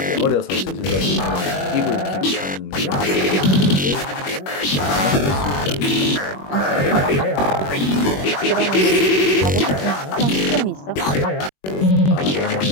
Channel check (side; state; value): right; late; 21 ms